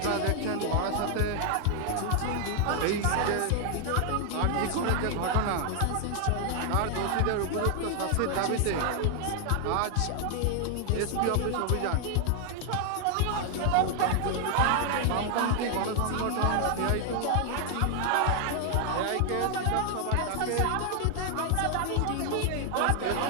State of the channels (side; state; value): both; different; correlation 0.00